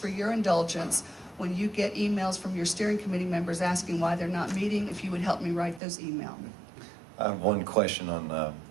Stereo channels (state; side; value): drops out; left; at 5.8 s